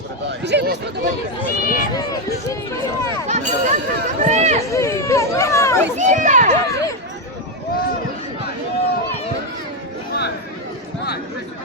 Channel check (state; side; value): normal; both; correlation 0.05